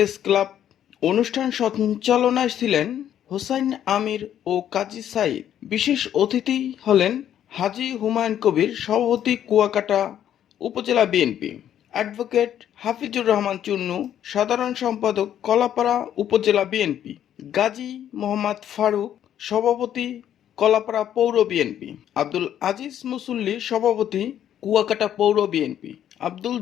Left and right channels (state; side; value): quieter; right; 10.5 dB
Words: ক্লাব। অনুষ্ঠান সঞ্চালনায় ছিলেন হোসাইন আমির ও কাজী সাইদ। বিশেষ অতিথি হলেন হাজী হুমায়ুন কবির, সভাপতি কুয়াকাটা উপজেলা বিএনপি, অ্যাডভোকেট হাফিজুর রহমান চুন্নু, সাধারণ সম্পাদক কলাপাড়া উপজেলা বিএনপি, গাজী মোহাম্মদ ফারুক, সভাপতি কলাপাড়া পৌর বিএনপি, আব্দুল আজিজ মুসল্লি, সভাপতি কুয়াকাটা পৌর বিএনপি, আব্দুল